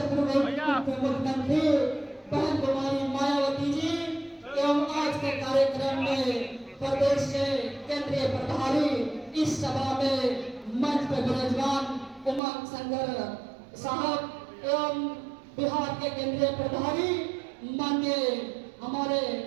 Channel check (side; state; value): left; drops out; at 12.4 s